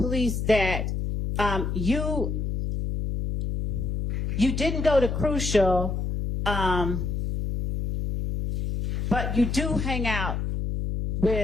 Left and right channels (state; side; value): noise; left; hum, 1 dB below the sound